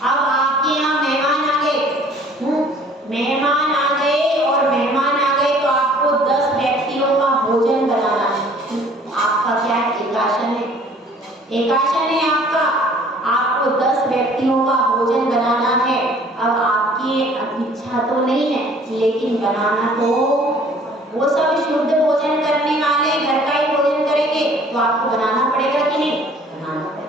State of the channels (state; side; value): normal; both; correlation 0.54